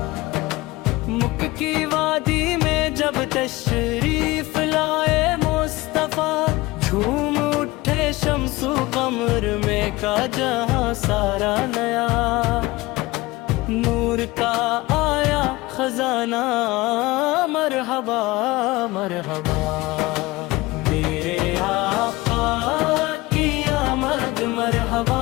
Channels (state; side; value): quieter; right; 20.4 dB